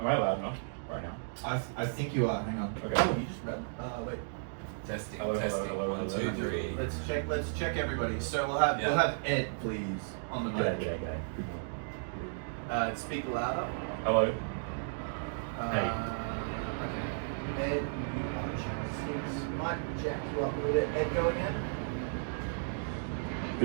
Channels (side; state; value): left; silent; digital silence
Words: I loud enough right now? I think you are. Hang on. Okay. Oh, you just read. Wait. Testing, Hello, hello, testing. hello, 1, hello. 2, 3. Let's check everybody. So we'll have Ed, please, on the mic. G'day. Good morning. Speak louder. Hello. Okay. Ed, you are channel 6. Might jack you up a little bit. Ed, go again.